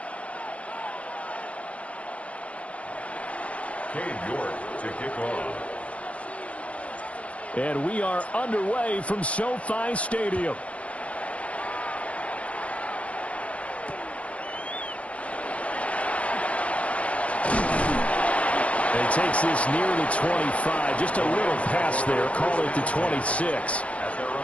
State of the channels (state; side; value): late; right; 0.063 ms